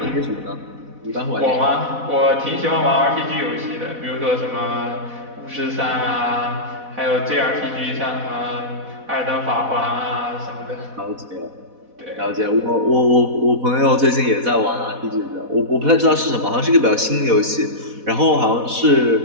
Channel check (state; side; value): late; left; 4.1 ms